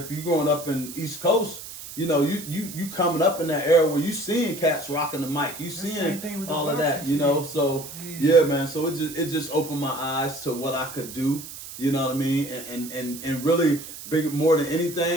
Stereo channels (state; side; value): noise; right; hiss, 12 dB below the sound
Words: you're growing up in East Coast, you know, you coming up in that era where you seeing cats rocking the mic, you seeing all of that, you know. So yeah, man. So it just opened my eyes to what I could do, you know what I mean, and really big, more than